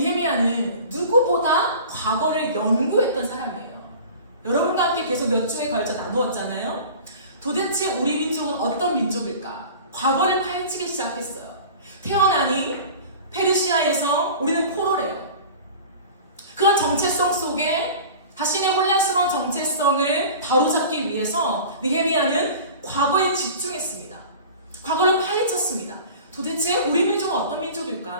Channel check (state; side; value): inverted; both; correlation -0.39